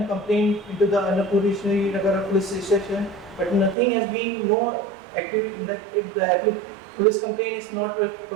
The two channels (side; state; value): left; drops out; at 3.8 s